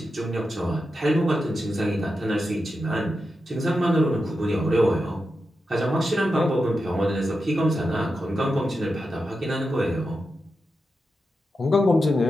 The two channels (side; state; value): both; normal; correlation 0.89